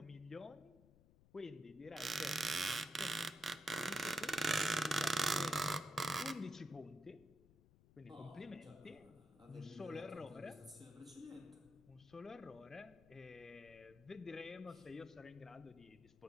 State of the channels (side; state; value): left; noise; rumble, 24 dB below the sound